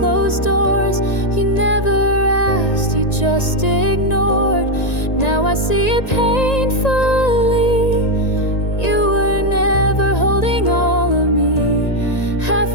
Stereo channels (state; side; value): late; right; 1.9 ms